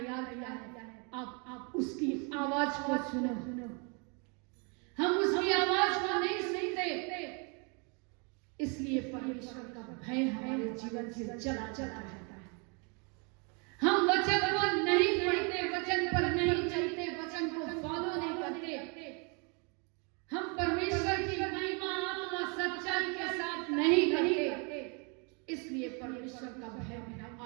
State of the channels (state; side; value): quieter; left; 34.6 dB